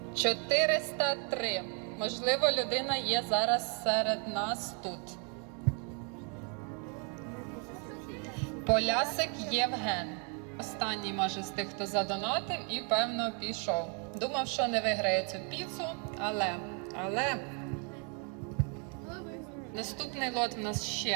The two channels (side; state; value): left; quieter; 37.2 dB